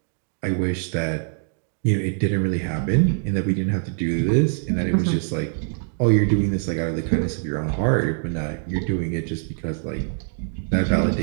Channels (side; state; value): left; silent; digital silence